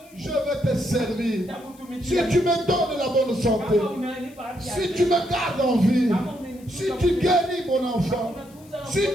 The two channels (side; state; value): left; noise; hiss, 26 dB below the sound